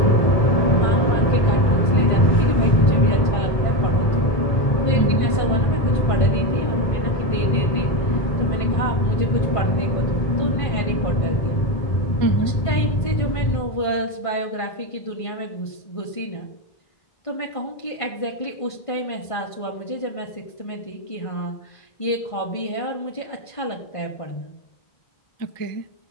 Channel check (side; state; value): right; late; 1.5 ms